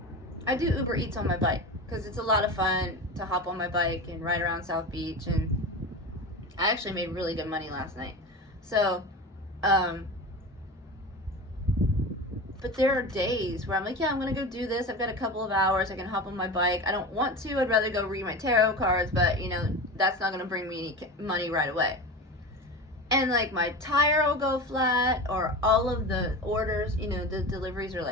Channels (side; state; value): both; normal; correlation 0.28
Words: I do Uber Eats on my bike because it's a lot of fun to hop on my bike and ride around South Beach, and I actually made really good money last night. So, but there are days where I'm like, yeah, I'm going to go do this. I've got a couple of hours. I can hop on my bike. I don't want to. I'd rather go read my tarot cards, but, that's not going to bring me any money right away. And, my tire will go flat, or all of the orders, the deliveries are